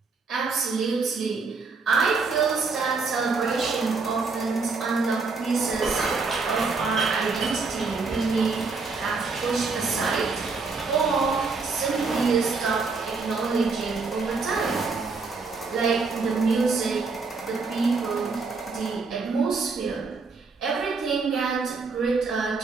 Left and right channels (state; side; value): quieter; left; 4.4 dB